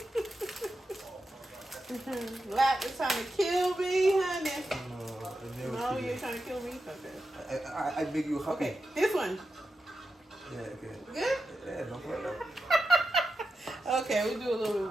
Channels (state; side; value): normal; both; correlation 0.90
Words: Lap is trying to kill me, honey. No, you're trying to kill me? Okay. I make you happy. Okay, this one. Yeah, okay. Good? Yeah, no problem. Okay, we do a little bit